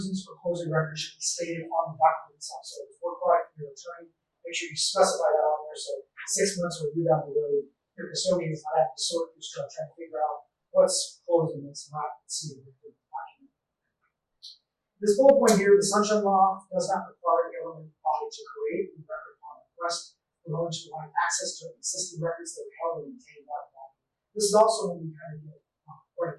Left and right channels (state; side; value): identical; both; correlation 1.00